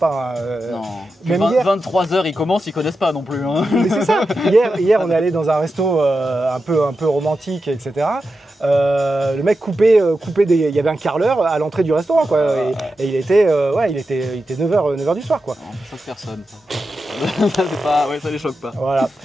Non. Même 23 h ils commencent, ils connaissent pas non plus. Hein. Mais c'est ça. Hier on est allé dans un resto un peu romantique, etc. Le mec coupait il y avait un carreleur à l'entrée du restaurant quoi, et il était 9h du soir quoi. Non, ça choque personne. C'est pas, ouais, ça les choque pas. Voilà.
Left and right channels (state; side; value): normal; both; correlation 0.90